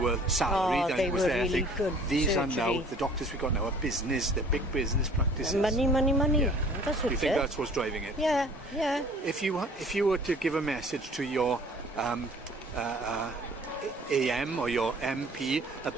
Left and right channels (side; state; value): both; normal; correlation 0.51